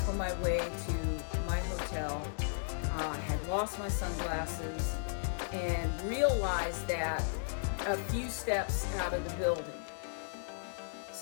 on my way to my hotel. I had lost my sunglasses and realized that a few steps out of the building.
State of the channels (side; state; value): right; silent; digital silence